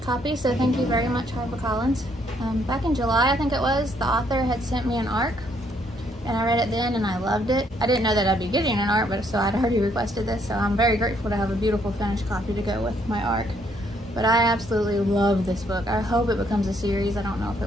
copy, so thank you very much, HarperCollins. Back in July, I think it was, the author had sent me an ARC, and I read it then and I loved it. I didn't know that I'd be getting an ARC, but so I'd already requested this, so I'm very grateful to have a beautiful finished copy to go with my ARC. But I absolutely love this book. I hope it becomes a series. I don't know if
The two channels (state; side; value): normal; both; correlation 0.69